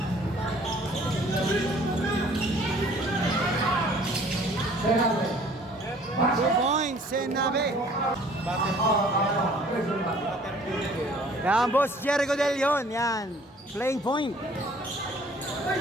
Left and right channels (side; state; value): both; normal; correlation 0.54